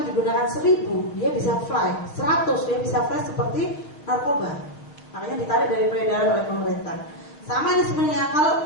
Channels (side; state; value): right; late; 6.6 ms